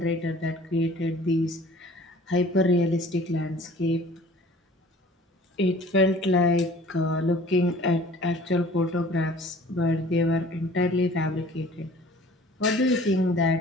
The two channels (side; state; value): both; normal; correlation 0.49